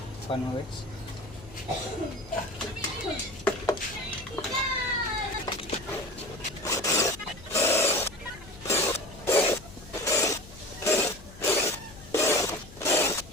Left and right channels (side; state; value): left; noise; hum, 19 dB below the sound